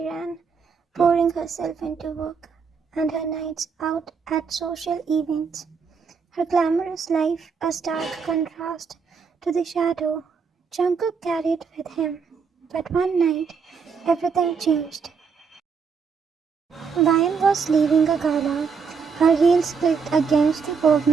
ran, pouring herself into work, and her nights out at social events. Her glamorous life a stark contrast to the shadow Jungkook carried with him. But one night, everything changed. Ryan was leaving a gala. Her heels clicked against the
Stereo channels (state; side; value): quieter; left; 5.7 dB